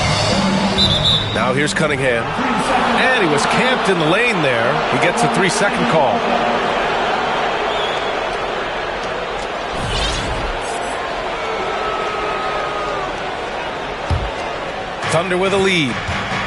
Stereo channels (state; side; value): identical; both; correlation 1.00